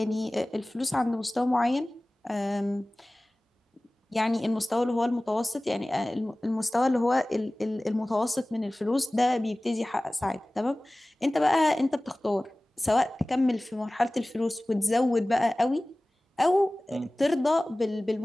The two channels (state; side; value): normal; both; correlation 0.98